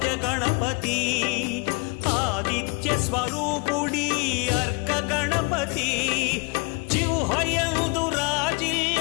ఆదిత్య స్వరూపుడి అర్క గణపతి జిహ్వయందు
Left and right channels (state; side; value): quieter; right; 29.8 dB